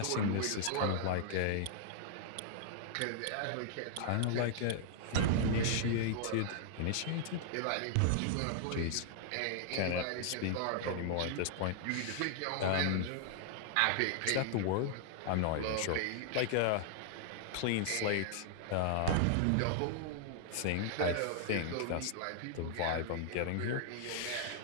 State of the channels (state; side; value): different; both; correlation -0.01